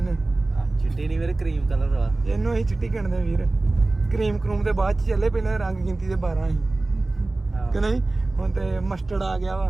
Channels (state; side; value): quieter; left; 3.0 dB